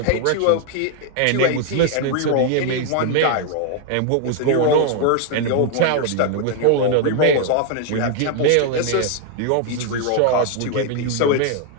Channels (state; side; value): different; both; correlation 0.00